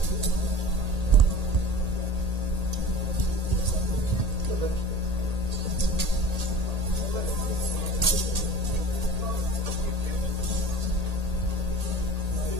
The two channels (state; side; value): late; left; 1.8 ms